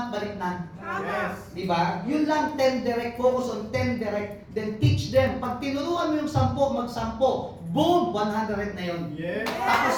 balik na. Yes. Diba? Yun lang, 10 direct, focus on 10 direct, then teach them. Pag tinuruan mo yung 10, mag-10. Boom! 100 na yun. Yes. Tapos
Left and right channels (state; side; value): identical; both; correlation 1.00